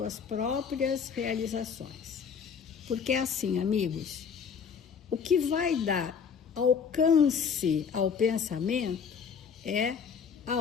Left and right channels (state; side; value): quieter; right; 6.6 dB